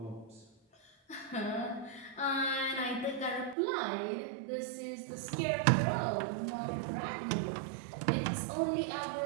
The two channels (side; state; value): left; drops out; at 3.6 s